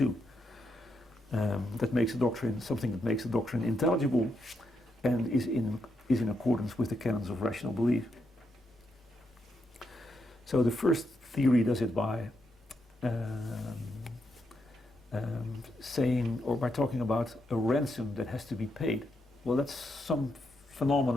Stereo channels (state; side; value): normal; both; correlation 0.81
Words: That makes a doctrine, something that makes a doctrine intelligible and is in accordance with the canons of rational belief. So the first theory does it by saying, or by talking about a ransom that has to be paid. Well, that's some